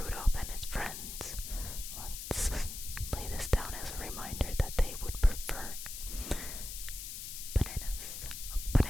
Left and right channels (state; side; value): noise; left; hiss, 8 dB below the sound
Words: and his friends, let's lay this down as a reminder that they would prefer bananas